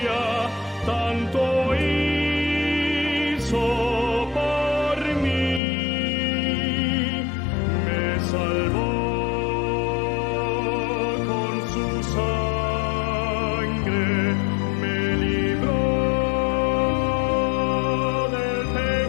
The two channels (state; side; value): drops out; right; at 5.6 s